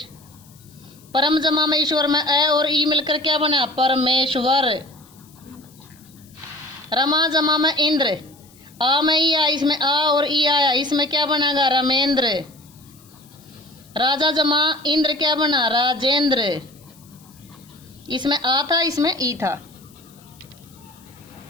परम जमा में ईश्वर में ए और ई मिलकर क्या बना? परमेश्वर। रमा जमा में इंद्र, आ में ई आया, इसमें आ और ई आया, इसमें क्या बनेगा? रमेंद्र। राजा जमा इंद्र क्या बना? राजेंद्र। इसमें आ था, इसमें ई था।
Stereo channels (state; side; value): noise; left; hiss, 27 dB below the sound